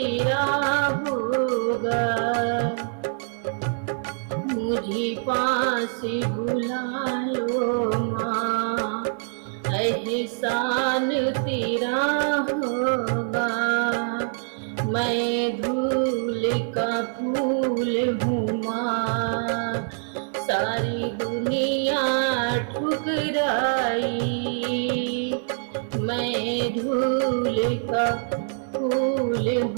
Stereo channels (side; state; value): left; silent; 60 dB below the other